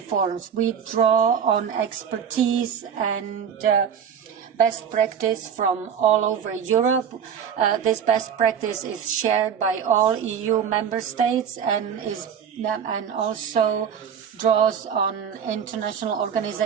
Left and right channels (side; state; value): left; quieter; 7.9 dB